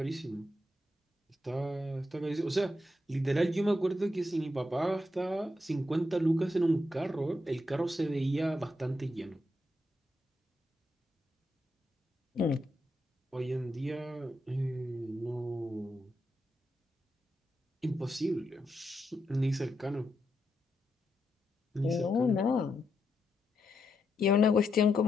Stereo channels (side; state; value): both; normal; correlation 0.83